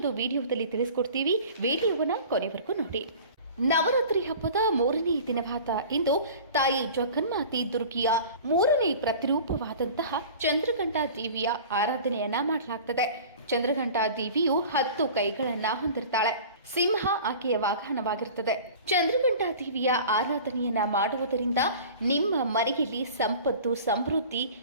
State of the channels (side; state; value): both; inverted; correlation -0.41